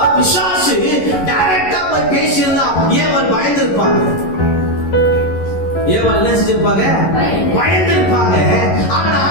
பிசாசு டைரக்டா போய் பேசியிருந்தா ஏவாள் பயந்திருப்பாங்க. ஏவாள் என்ன செஞ்சிருப்பாங்க? பயந்திருப்பாங்க. ஆனா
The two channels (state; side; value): late; right; 11 ms